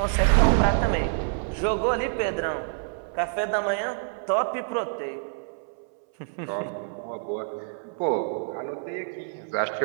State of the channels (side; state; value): left; silent; 60 dB below the other